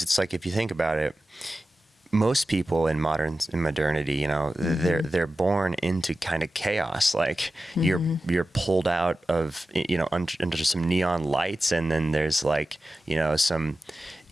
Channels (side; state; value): both; normal; correlation 0.94